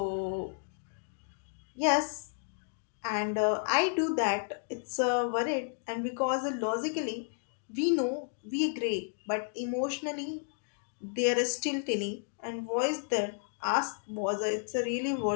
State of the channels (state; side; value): silent; right; digital silence